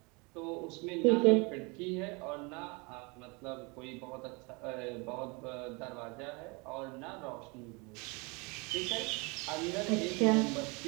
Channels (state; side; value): quieter; left; 29.0 dB